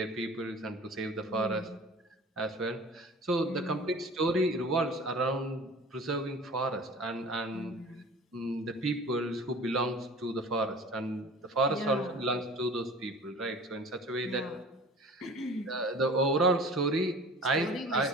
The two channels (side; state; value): both; normal; correlation 0.42